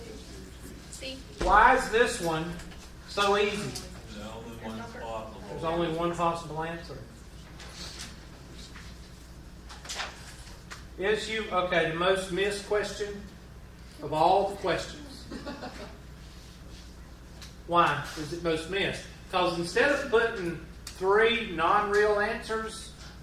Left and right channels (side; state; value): both; identical; correlation 1.00